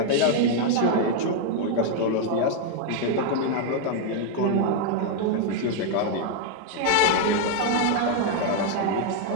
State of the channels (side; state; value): both; different; correlation 0.00